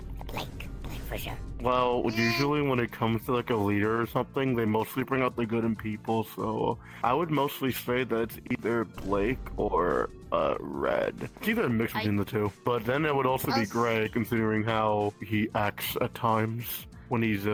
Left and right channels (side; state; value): both; identical; correlation 1.00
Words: for sure. Well, usually when it comes to like a leader or something, they mostly bring out the good in people, so I would mostly say that it's either Blake or Red. It's either a mix between the two. But then it would also be Gray, considering how he acts at times when he's